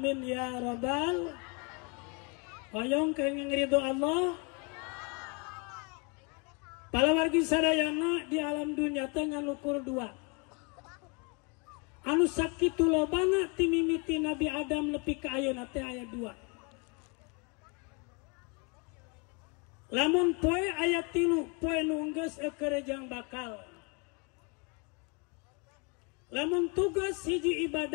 ya rabbal. Hoyong kenging ridho Allah. Para wargi sadayana di alam dunia tengah ukur dua. Anu sakitu lobana timimiti Nabi Adam nepi ka ayeuna teh aya 2. Lamun poe aya 3, poe nu geus ekerejang bakal. Lamun tugas hiji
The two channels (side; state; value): right; quieter; 33.0 dB